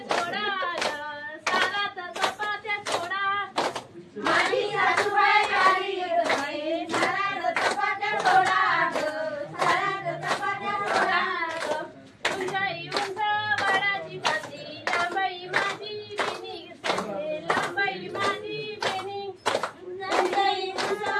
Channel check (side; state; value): both; identical; correlation 1.00